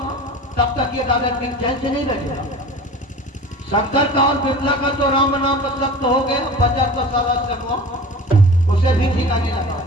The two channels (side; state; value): both; normal; correlation 0.38